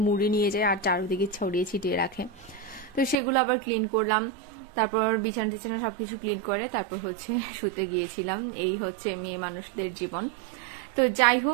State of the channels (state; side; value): drops out; left; at 3.2 s